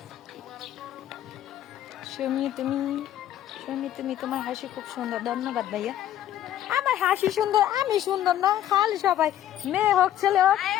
তুমি তোমার হাসি খুব সুন্দর, ধন্যবাদ ভাইয়া। আমার হাসি সুন্দর, আমি সুন্দর না? খালি সবাই মেয়ে হোক ছেলে হোক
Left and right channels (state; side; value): quieter; right; 11.9 dB